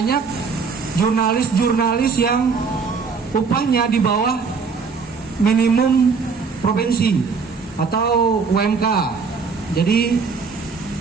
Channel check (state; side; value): quieter; left; 5.2 dB